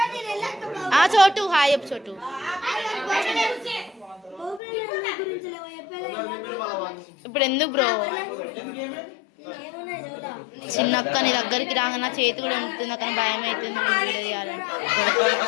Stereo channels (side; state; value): right; drops out; at 4.6 s